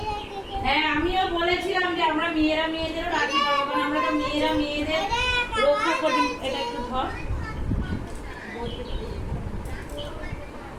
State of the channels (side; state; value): both; identical; correlation 1.00